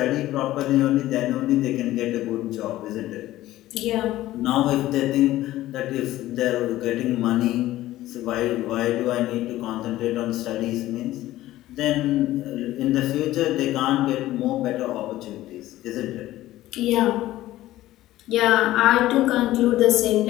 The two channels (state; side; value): quieter; right; 15.4 dB